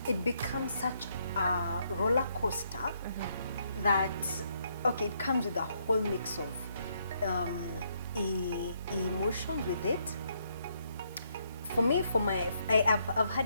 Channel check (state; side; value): inverted; both; correlation -0.74